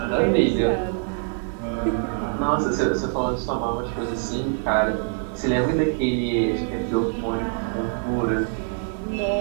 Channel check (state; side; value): silent; left; 55 dB below the other